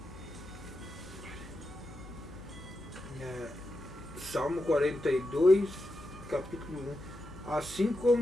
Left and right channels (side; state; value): left; noise; hum, 17 dB below the sound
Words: Salmo 42, capítulo 1. Assim